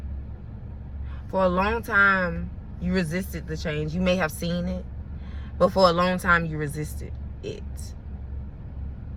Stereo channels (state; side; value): identical; both; correlation 1.00